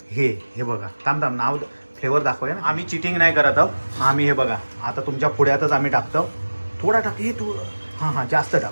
हे बघा. थांब नाव फ्लेवर दाखवूया ना. आम्ही चिटिंग नाही करत आहोत. आम्ही हे बघा आता तुमच्या पुढ्यातच आम्ही टाकतो. थोडा टाक. हे तू हां जास्त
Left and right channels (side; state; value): both; inverted; correlation -1.00